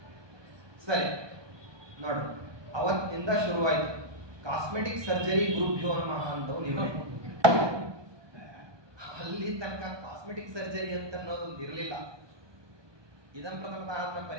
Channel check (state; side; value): late; left; 1.2 ms